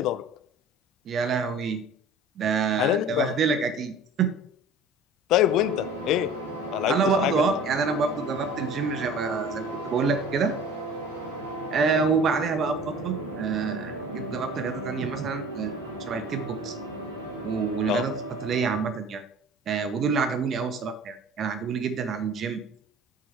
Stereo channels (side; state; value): both; normal; correlation 0.43